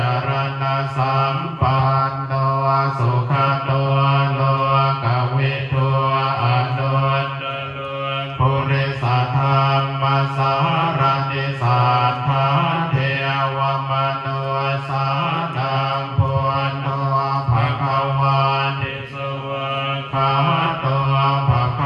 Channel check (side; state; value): both; identical; correlation 1.00